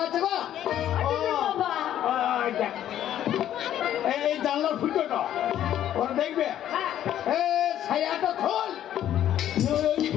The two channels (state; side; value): quieter; right; 11.4 dB